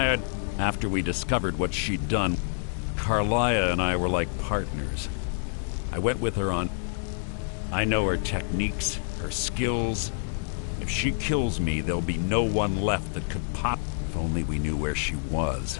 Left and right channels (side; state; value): right; silent; digital silence